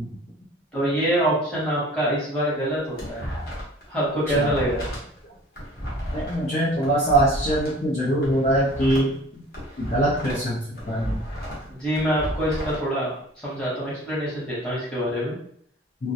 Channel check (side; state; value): both; normal; correlation 0.46